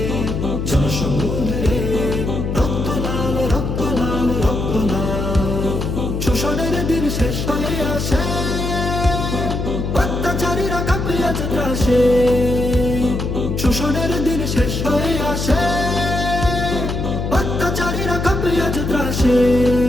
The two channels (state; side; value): noise; left; hum, 2 dB below the sound